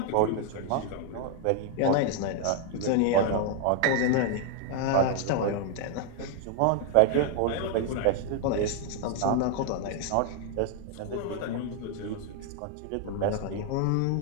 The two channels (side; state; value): both; different; correlation 0.00